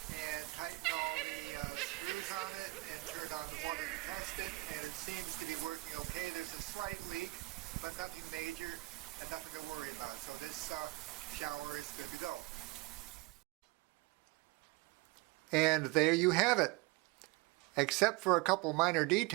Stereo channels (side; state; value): left; quieter; 22.9 dB